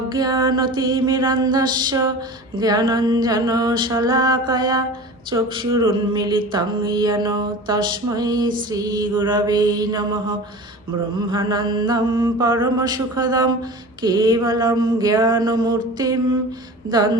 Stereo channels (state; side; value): normal; both; correlation 0.36